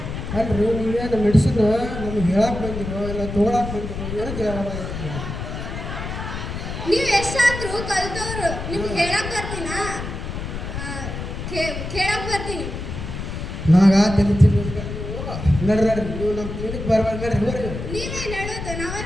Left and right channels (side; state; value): left; noise; rumble, 6 dB below the sound